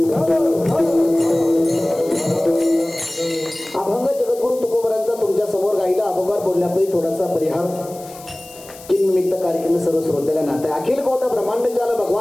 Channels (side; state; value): left; noise; hiss, 19 dB below the sound